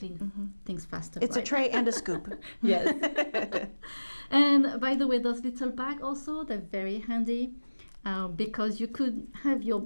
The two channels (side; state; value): both; inverted; correlation -1.00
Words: things faster. It's a tray and a scoop. Yes. And by the way, those little bags also, they're very handy. Because you could have your